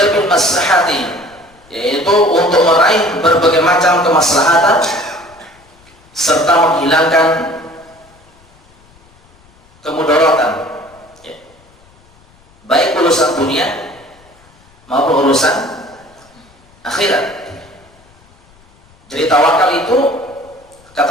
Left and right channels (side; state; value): left; noise; rumble, 30 dB below the sound